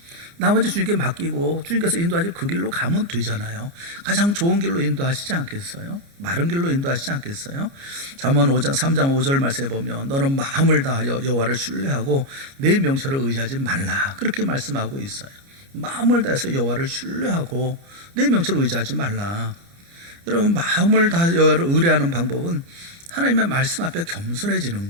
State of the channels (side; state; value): left; late; 29 ms